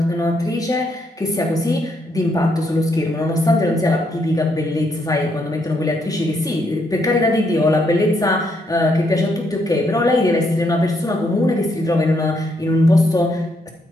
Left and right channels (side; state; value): both; normal; correlation 0.75